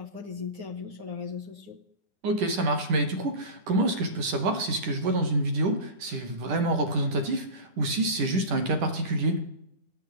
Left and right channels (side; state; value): left; late; 10 ms